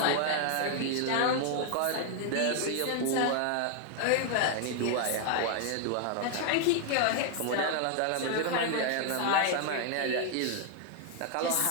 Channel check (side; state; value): both; different; correlation 0.00